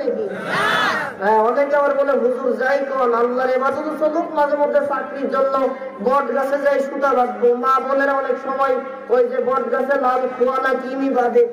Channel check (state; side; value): identical; both; correlation 1.00